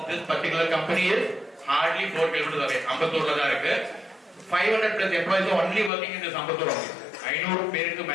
this particular company is hardly 4 kilometers away. அம்பத்தூர்ல தான் இருக்கு. 500 plus employees are only working in this Ambattur office. 500 பேருக்கு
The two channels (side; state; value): right; drops out; at 5.9 s